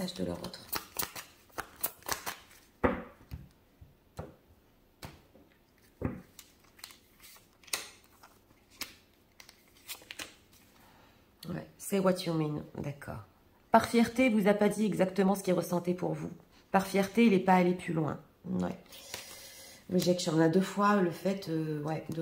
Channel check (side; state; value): both; identical; correlation 1.00